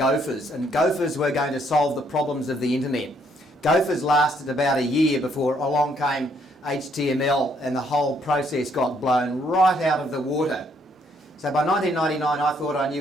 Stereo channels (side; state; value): both; normal; correlation 0.69